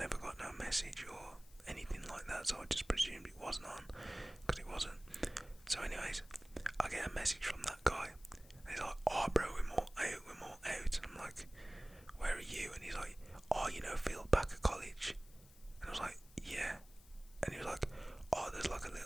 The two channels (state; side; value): noise; left; hiss, 24 dB below the sound